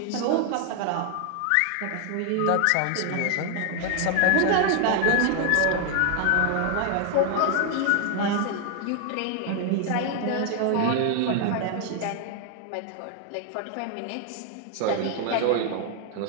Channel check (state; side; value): different; both; correlation 0.00